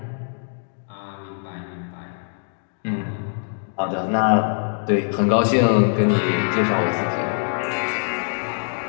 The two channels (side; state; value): right; silent; 63 dB below the other